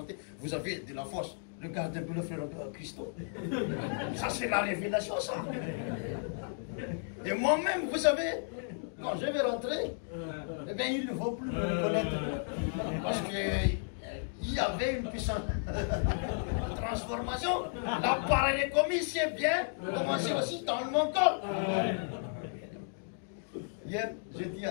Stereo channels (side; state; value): right; silent; digital silence